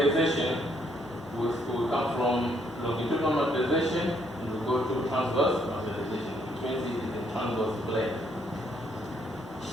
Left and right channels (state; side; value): normal; both; correlation 0.70